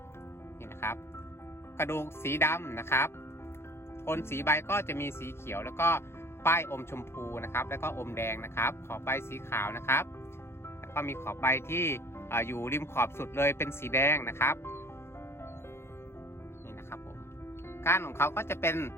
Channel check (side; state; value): right; late; 0.12 ms